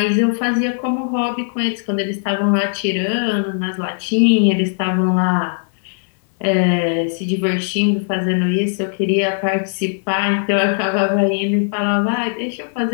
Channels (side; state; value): right; silent; 60 dB below the other